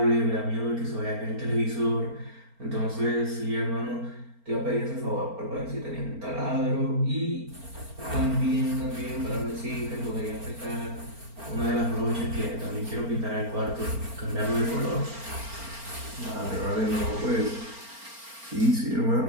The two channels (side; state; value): left; late; 4.4 ms